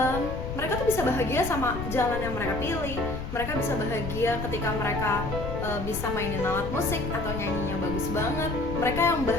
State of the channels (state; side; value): noise; left; rumble, 6 dB below the sound